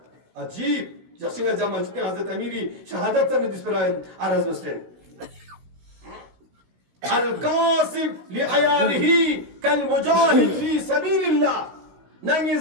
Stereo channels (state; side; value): late; left; 16 ms